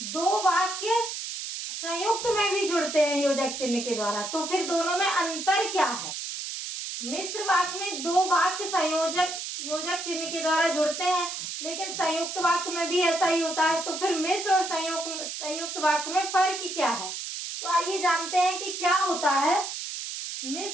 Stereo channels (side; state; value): right; noise; hiss, 6 dB below the sound